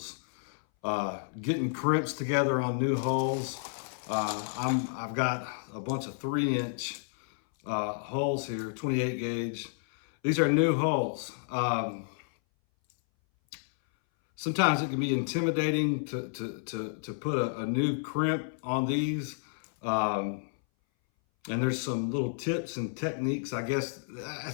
Getting crimps together on new hulls. I've got a bunch of 3-inch hulls here, 28 gauge. These are new hulls. Sometimes it can be intimidating to put a new crimp on these. And there's some little tips and techniques. I guess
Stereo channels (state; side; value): silent; right; 57 dB below the other